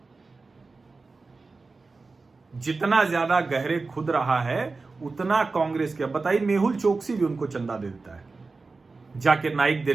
जितना ज्यादा गहरे खुद रहा है, उतना कांग्रेस के, बताइए, मेहुल चोकसी भी उनको चंदा दे देता है, जाकिर नाइक दे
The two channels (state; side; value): quieter; left; 3.9 dB